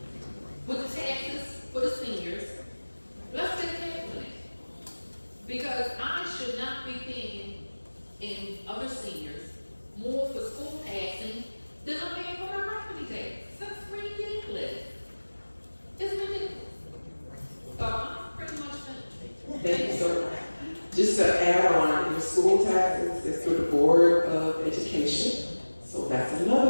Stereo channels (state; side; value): inverted; both; correlation -1.00